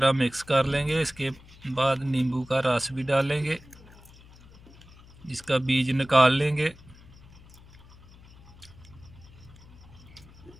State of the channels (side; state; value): left; noise; hum, 22 dB below the sound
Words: मिक्स कर लेंगे। इसके बाद नींबू का रस भी डालेंगे, इसका बीज निकाल लेंगे।